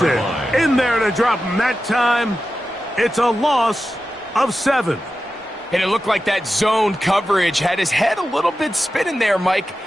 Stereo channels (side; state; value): both; normal; correlation 0.92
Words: in there to drop him that time. It's a loss of 7. And it looked like that zone coverage had his head a little bit spinning there, Mike.